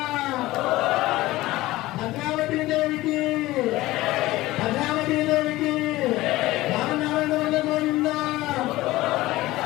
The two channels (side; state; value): right; quieter; 17.9 dB